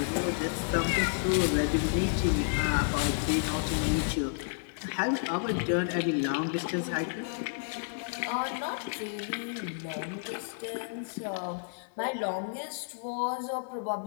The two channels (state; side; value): silent; right; digital silence